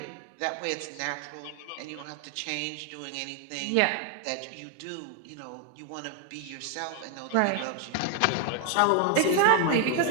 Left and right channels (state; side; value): different; both; correlation 0.01